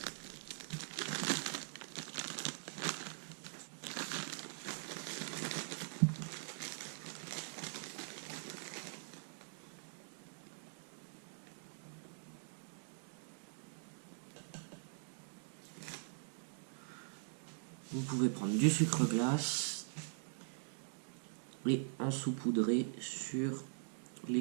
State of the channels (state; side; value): silent; left; digital silence